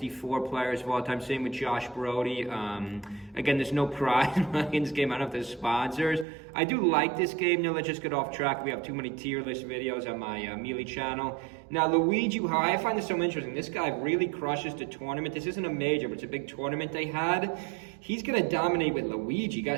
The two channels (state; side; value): drops out; left; at 6.2 s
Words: players of all time. Same with Josh Brody. Again, there's no prize money in this game. I don't know if there's sponsors. I do like this game. Now let's just get off track. We have too many tier list videos on my Melee channel. Now Luigi, how I find this so interesting. This guy really crushes the tournament. This isn't a major, but it's a big tournament they had. He's gonna dominate with Luigi.